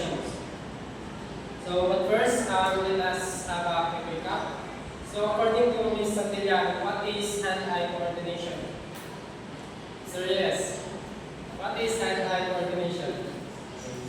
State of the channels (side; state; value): both; identical; correlation 1.00